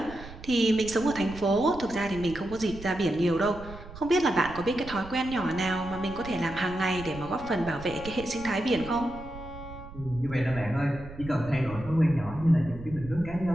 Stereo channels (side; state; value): right; noise; rumble, 14 dB below the sound